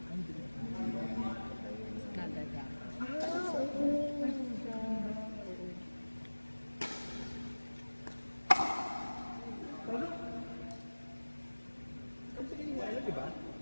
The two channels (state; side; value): inverted; both; correlation -1.00